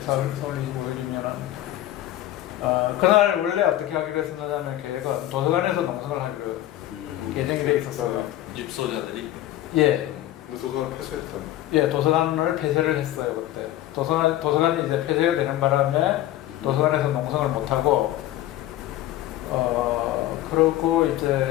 4월 25일이면은 그날 원래 어떻게 하기로 했었냐면 계획은 도서관에서 농성을 하기로 예정이 돼 있었어요. 입소자들이? 예. 도서관 폐쇄했던. 예, 도서관을 폐쇄를 했어요 그때. 도서관이 이제 폐쇄가 되는 바람에 도서관에서 농성을 못 하고, 그러고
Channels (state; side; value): quieter; right; 14.2 dB